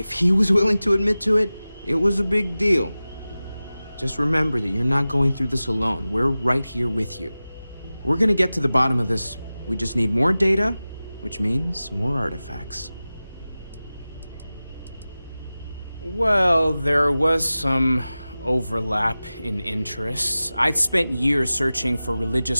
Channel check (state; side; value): inverted; both; correlation -0.96